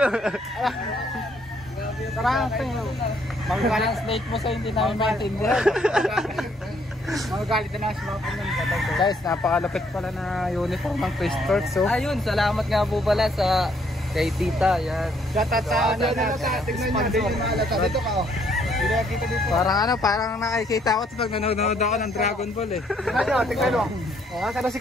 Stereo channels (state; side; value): normal; both; correlation 0.68